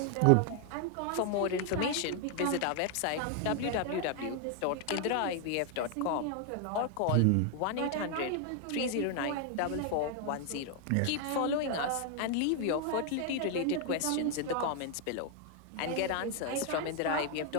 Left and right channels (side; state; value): both; different; correlation 0.00